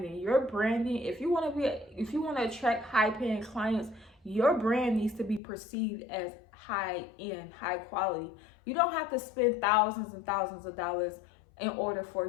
Your branding, if you want to attract high paying clients, your brand needs to be perceived as high end, high quality. You don't have to spend thousands and thousands of dollars in order for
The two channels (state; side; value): drops out; right; at 5.4 s